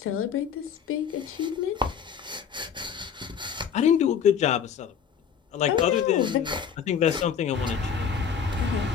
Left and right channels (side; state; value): right; quieter; 7.5 dB